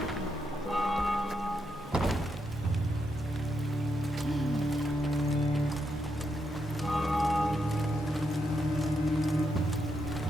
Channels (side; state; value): both; normal; correlation 0.81